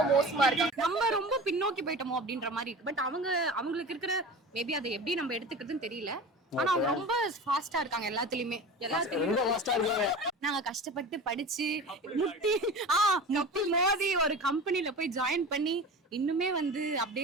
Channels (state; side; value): normal; both; correlation 0.34